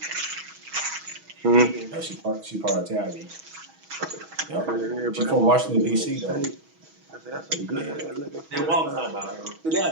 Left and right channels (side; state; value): left; late; 6.2 ms